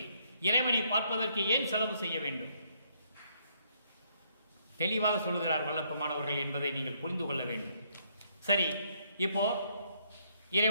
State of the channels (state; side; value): inverted; both; correlation -0.70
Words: இறைவனை பார்ப்பதற்கு ஏன் செலவு செய்ய வேண்டும்? தெளிவாக சொல்லுகிறார் வல்லற்பமானவர்கள் என்பதை நீங்கள் புரிந்து கொள்ள வேண்டும். சரி, இப்போ